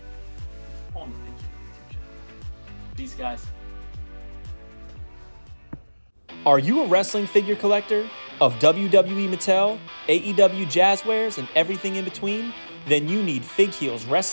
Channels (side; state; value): both; inverted; correlation -1.00